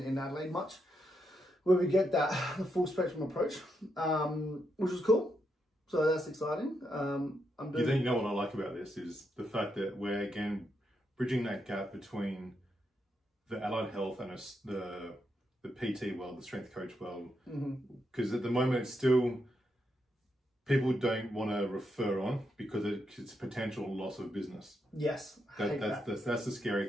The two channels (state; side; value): normal; both; correlation 0.81